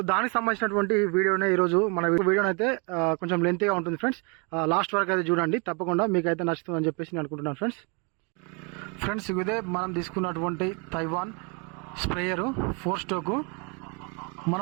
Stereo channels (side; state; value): left; quieter; 33.5 dB